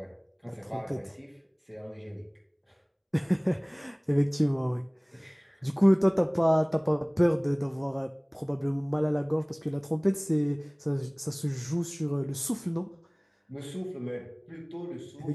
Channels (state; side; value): identical; both; correlation 1.00